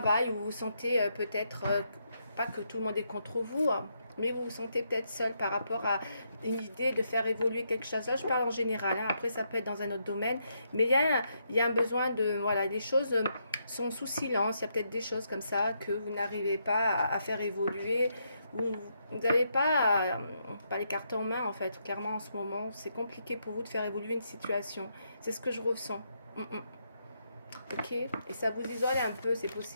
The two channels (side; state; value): both; inverted; correlation -0.78